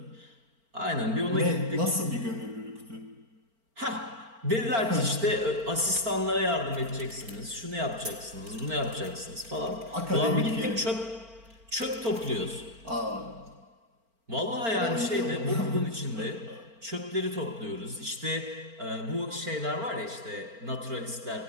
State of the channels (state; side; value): late; left; 4.4 ms